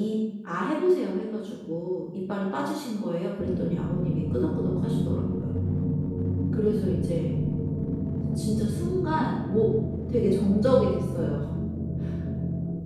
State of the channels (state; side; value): identical; both; correlation 1.00